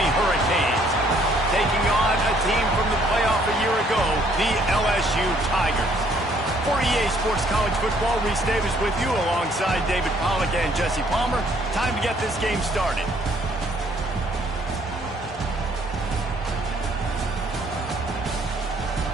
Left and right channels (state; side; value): normal; both; correlation 0.64